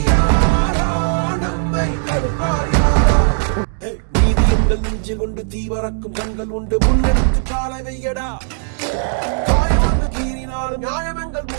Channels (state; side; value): silent; left; digital silence